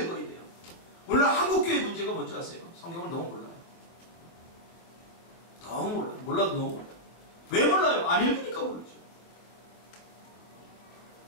읽어야 돼요. 오늘 한국교회 문제가 뭔지 아세요? 성경을 너무 몰라요. 너무 몰라요. 몰라도 너무 몰라요. 왜 몰라요? 안 읽으니까 모르죠.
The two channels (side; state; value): right; late; 24 ms